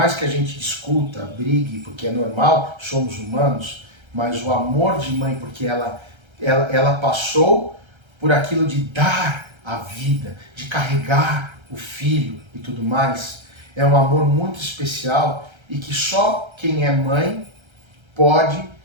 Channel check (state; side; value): late; left; 1.3 ms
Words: que a gente discuta, brigue, porque é normal, somos humanos, mas o amor de mãe, porque ela passou por aquilo de dar a vida, de carregar o filho e tudo mais, é um amor muito especial e que só quem é mãe pode,